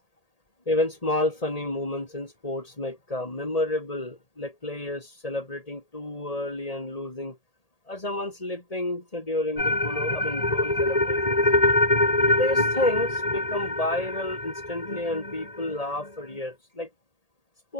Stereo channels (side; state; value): right; late; 1.8 ms